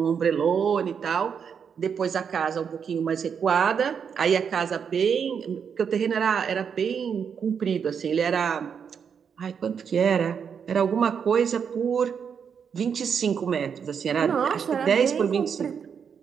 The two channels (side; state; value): left; quieter; 7.0 dB